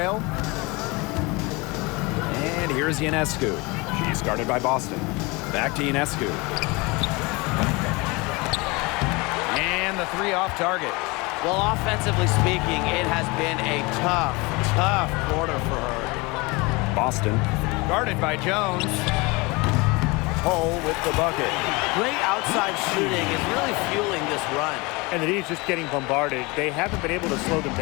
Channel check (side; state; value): right; quieter; 25.5 dB